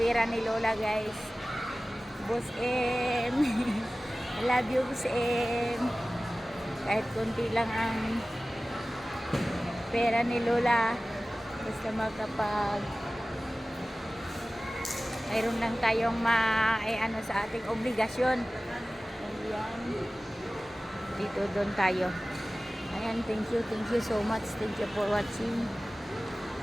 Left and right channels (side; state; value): both; normal; correlation 0.97